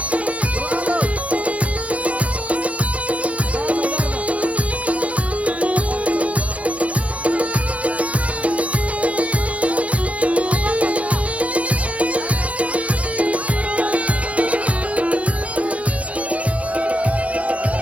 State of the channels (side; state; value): left; late; 0.065 ms